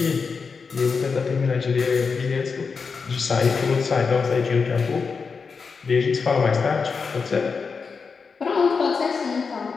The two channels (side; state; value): right; quieter; 5.2 dB